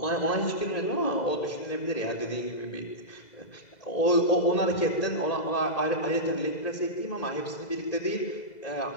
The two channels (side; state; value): right; late; 2.0 ms